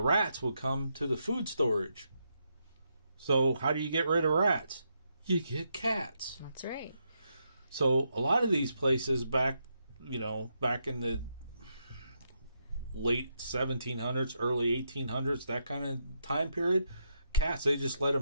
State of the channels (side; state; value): both; inverted; correlation -0.80